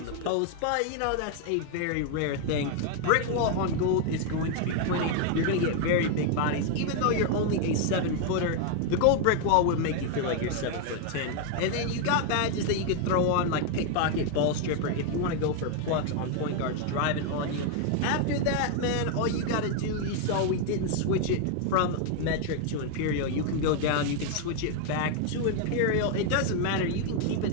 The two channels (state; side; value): different; both; correlation 0.01